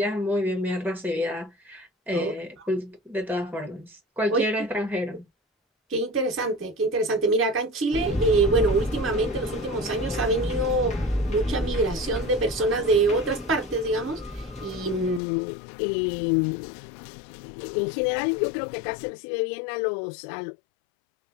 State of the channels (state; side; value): drops out; right; at 15.2 s